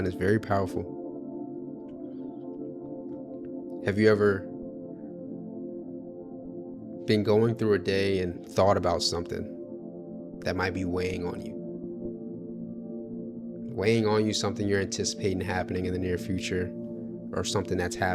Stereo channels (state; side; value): identical; both; correlation 1.00